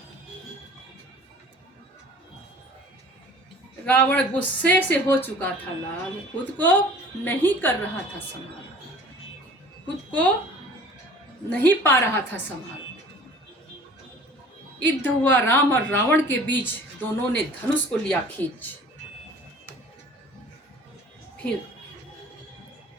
रावण गुस्से से हो चुका था लाल, खुद को नहीं कर रहा था संभाल, खुद को नहीं पा रहा था संभाल। युद्ध हुआ राम और रावण के बीच, दोनों ने धनुष को लिया खींच। फिर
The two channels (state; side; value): normal; both; correlation 0.47